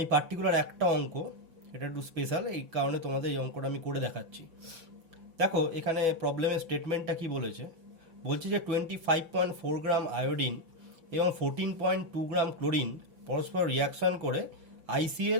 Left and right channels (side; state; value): left; late; 5.8 ms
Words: পার্টিকুলার একটা অঙ্ক, এটা একটু স্পেশাল, এই কারণে তোমাদের এই অঙ্কটা আমি করে দেখাচ্ছি। দেখো, এখানে প্রবলেমের স্টেটমেন্টটা কি বলেছে, বলছে যে 25.4 গ্রাম আয়োডিন এবং 14.2 গ্রাম ক্লোরিন পরস্পর রিয়াকশন করে